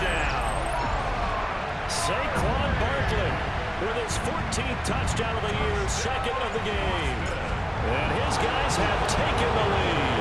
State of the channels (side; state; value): both; identical; correlation 1.00